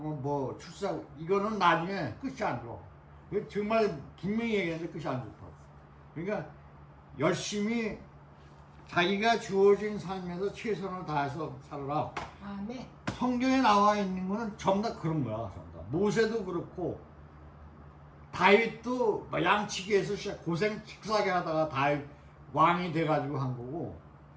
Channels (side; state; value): both; identical; correlation 1.00